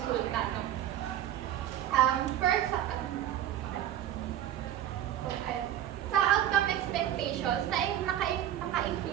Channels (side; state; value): left; quieter; 11.6 dB